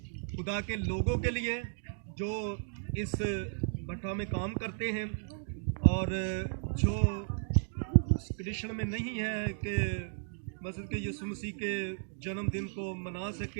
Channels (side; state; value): left; silent; digital silence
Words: खुदा के लोगों के लिए जो इस भट्टा में काम करते हैं और जो कृष्ण में नहीं है कि मसीह के यीशु मसीह के जन्मदिन को मना